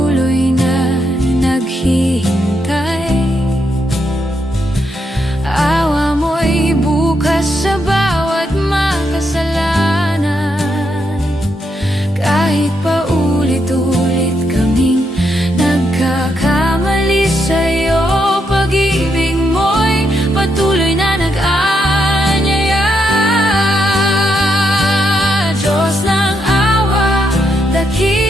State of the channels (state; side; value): normal; both; correlation 0.80